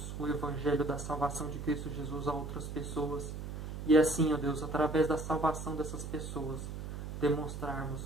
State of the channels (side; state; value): right; noise; hum, 7 dB below the sound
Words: o Evangelho da salvação de Cristo Jesus a outras pessoas. E assim, ó Deus, através da salvação dessas pessoas, demonstrarmos